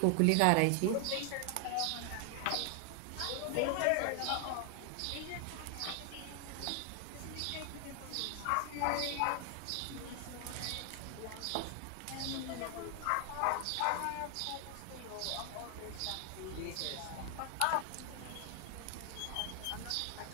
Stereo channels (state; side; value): different; both; correlation 0.00